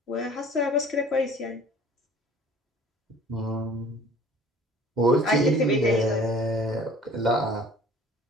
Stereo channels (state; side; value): normal; both; correlation 0.49